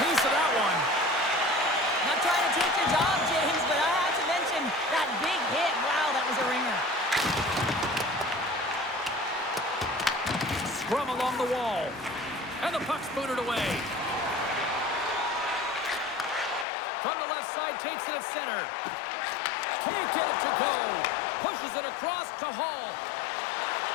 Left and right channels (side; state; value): right; drops out; at 16.7 s